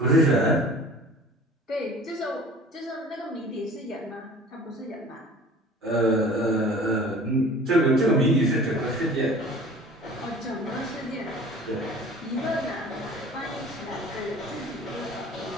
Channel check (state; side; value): normal; both; correlation 0.45